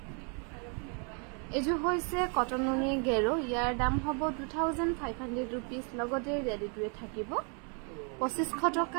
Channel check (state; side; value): quieter; left; 38.8 dB